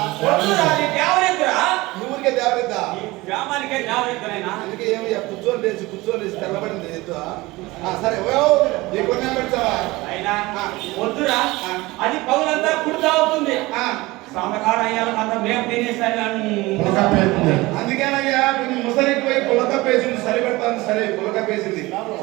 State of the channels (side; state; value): left; quieter; 20.9 dB